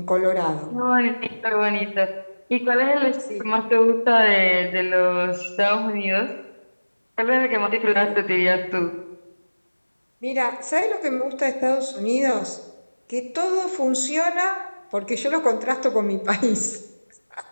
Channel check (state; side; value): inverted; both; correlation -1.00